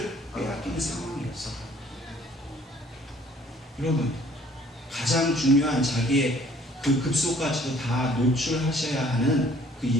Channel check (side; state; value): both; normal; correlation 0.58